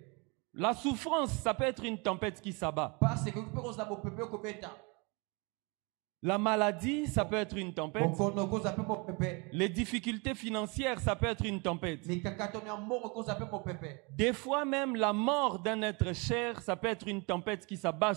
La souffrance, ça peut être une tempête qui s'abat. La maladie, ça peut être une tempête. Les difficultés financières, ça peut être une tempête. Des fois même, la mort d'un être cher, ça peut être une tempête qui s'abat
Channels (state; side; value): quieter; left; 30.1 dB